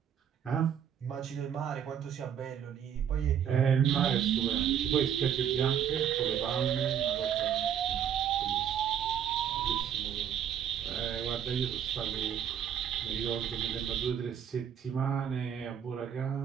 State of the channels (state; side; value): quieter; left; 8.8 dB